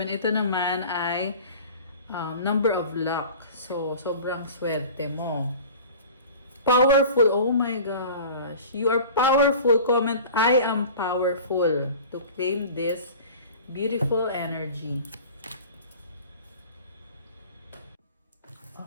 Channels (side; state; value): both; inverted; correlation -0.40